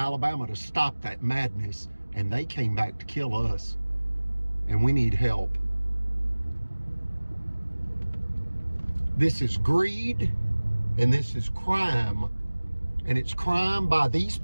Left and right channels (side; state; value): both; inverted; correlation -1.00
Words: to stop that madness, and they came back to kill us. And we need help. This is greed, and this is crime. And it's crime by these